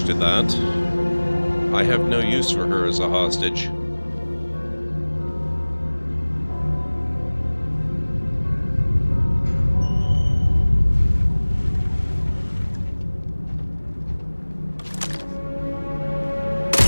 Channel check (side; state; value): both; inverted; correlation -1.00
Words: to that. I have no use for her as a hostage.